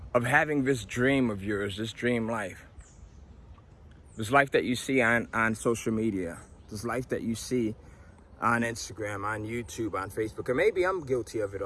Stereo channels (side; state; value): both; identical; correlation 1.00